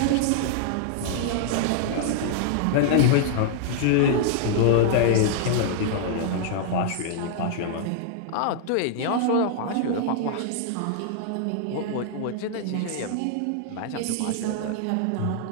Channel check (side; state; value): both; different; correlation -0.01